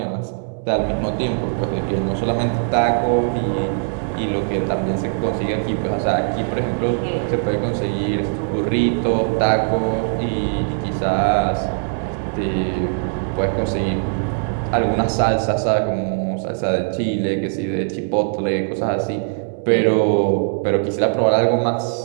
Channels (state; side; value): silent; left; 65 dB below the other